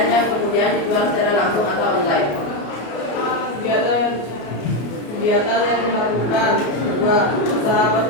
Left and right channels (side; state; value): right; late; 33 ms